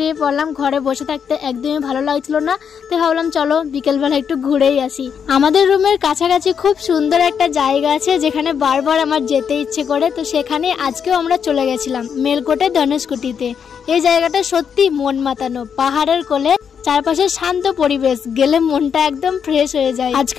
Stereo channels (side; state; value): right; quieter; 7.2 dB